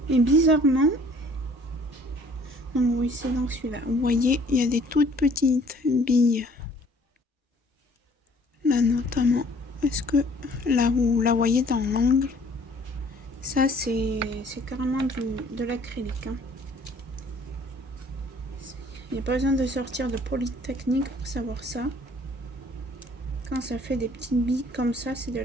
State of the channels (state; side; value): normal; both; correlation 0.56